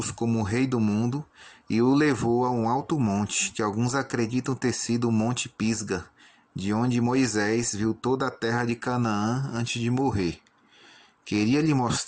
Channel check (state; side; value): identical; both; correlation 1.00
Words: como o rei do mundo e o levou a um alto monte, que alguns acreditam ter sido o Monte Pisga, de onde Moisés viu toda a terra de Canaã antes de morrer. Queria lhe